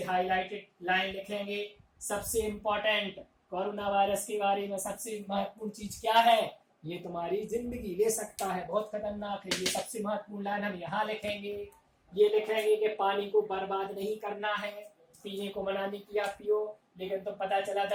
हाईलाइटेड लाइन लिखेंगे। सबसे इंपॉर्टेंट कोरोना वायरस के बारे में सबसे महत्वपूर्ण चीज क्या है, ये तुम्हारी जिंदगी ले सकता है, बहुत खतरनाक है। ये सबसे महत्वपूर्ण लाइन हम यहाँ लिखेंगे। ये लिखेंगे कि पानी को बर्बाद नहीं करना है, पीने को मना नहीं किया पियो, लेकिन तो पता चला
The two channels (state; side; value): identical; both; correlation 1.00